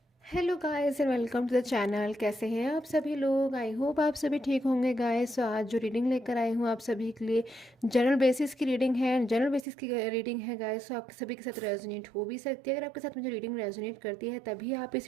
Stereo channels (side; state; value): left; drops out; at 9.7 s